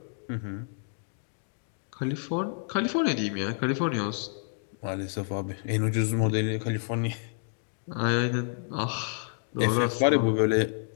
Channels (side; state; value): right; silent; 59 dB below the other